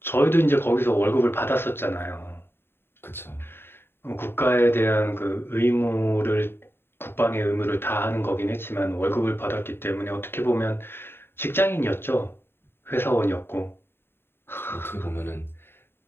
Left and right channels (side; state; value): right; late; 0.11 ms